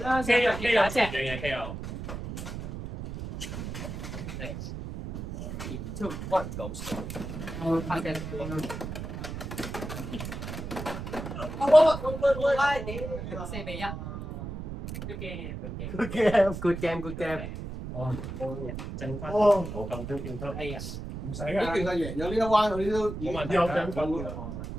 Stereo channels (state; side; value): noise; right; rumble, 7 dB below the sound